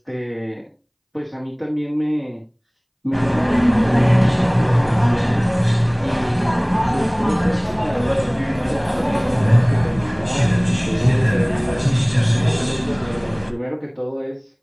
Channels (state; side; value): identical; both; correlation 1.00